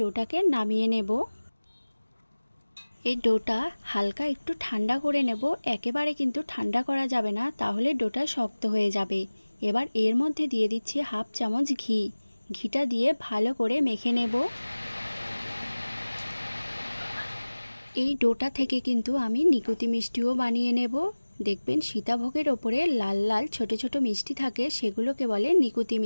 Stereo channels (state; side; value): inverted; both; correlation -1.00